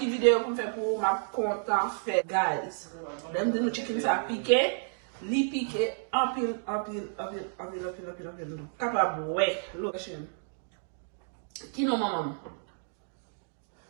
vidéo pour faire pour ma content fait, guys. Dem de nous chicken ça piqué, li piqué, en pile. Capable, ouais, location. Qui non maman?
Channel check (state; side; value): silent; left; digital silence